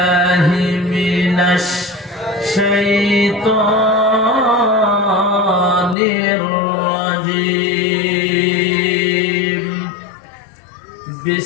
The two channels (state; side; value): drops out; right; at 6.0 s